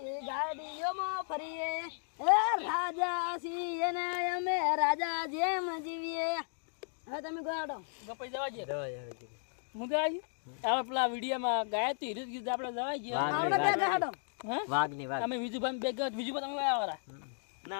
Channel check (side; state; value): right; silent; digital silence